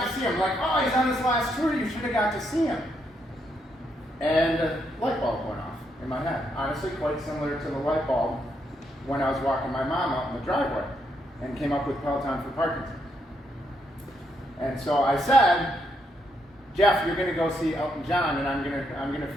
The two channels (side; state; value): both; normal; correlation 0.78